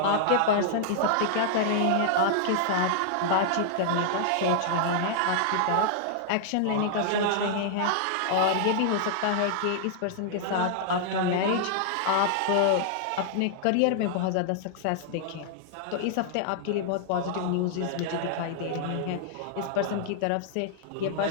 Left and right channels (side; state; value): both; different; correlation -0.01